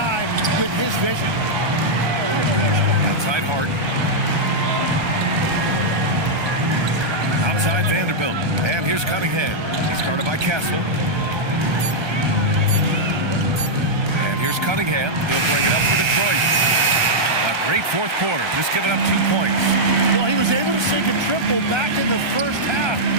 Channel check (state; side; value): late; left; 1.2 ms